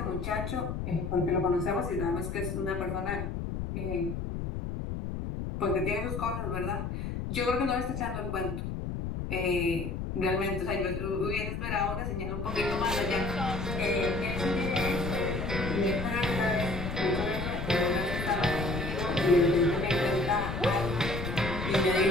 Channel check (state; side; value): noise; left; rumble, 4 dB below the sound